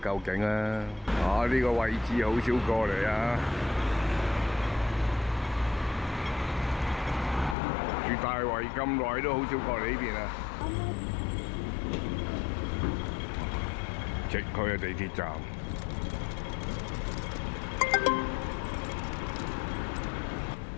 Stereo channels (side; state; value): right; drops out; at 7.6 s